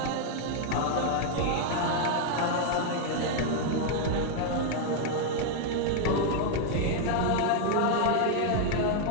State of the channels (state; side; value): different; both; correlation 0.00